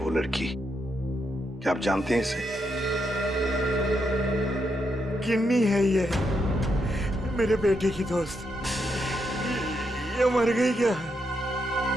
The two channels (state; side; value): normal; both; correlation 0.80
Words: लड़की। क्या आप जानते हैं इसे? किन्नी है ये, मेरे बेटे की दोस्त। ये मर गई क्या?